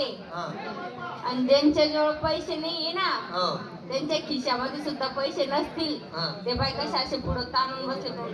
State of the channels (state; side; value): identical; both; correlation 1.00